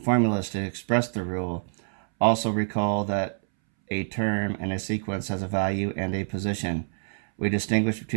to express the rule. Also recall that a term in a sequence has a value and a position. We distinguish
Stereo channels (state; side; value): silent; left; 60 dB below the other